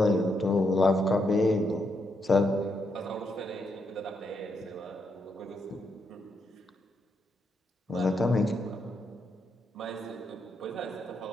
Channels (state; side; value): normal; both; correlation 0.80